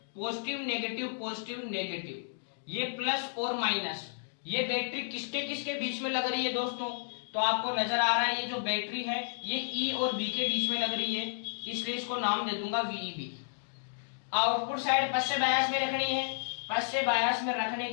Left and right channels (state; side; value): silent; right; digital silence